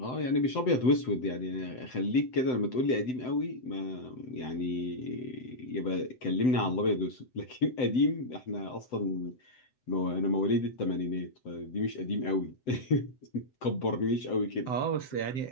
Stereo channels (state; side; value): late; right; 7.8 ms